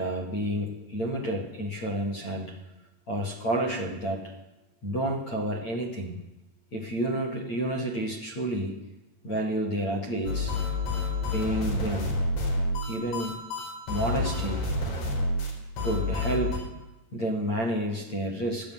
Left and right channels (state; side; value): late; right; 8.7 ms